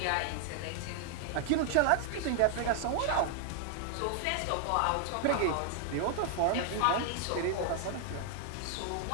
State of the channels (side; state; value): both; different; correlation 0.00